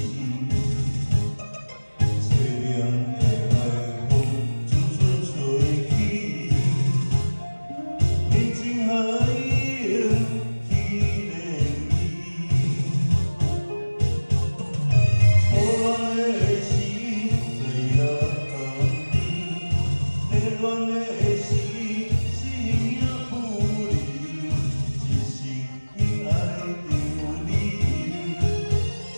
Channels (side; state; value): both; inverted; correlation -1.00